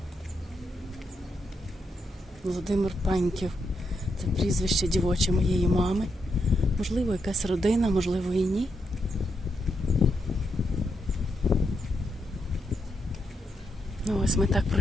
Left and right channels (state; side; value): normal; both; correlation 0.82